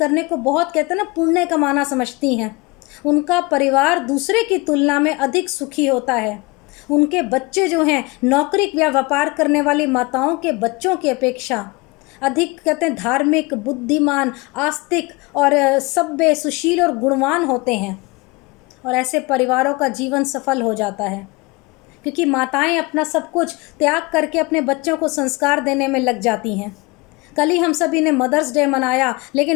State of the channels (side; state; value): right; quieter; 24.8 dB